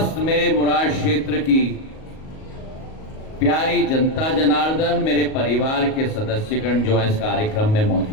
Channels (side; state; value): right; late; 38 ms